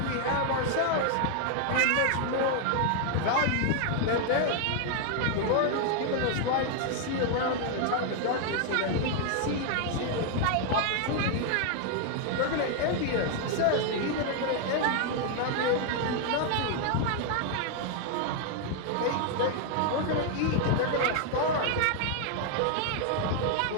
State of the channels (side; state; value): both; different; correlation 0.00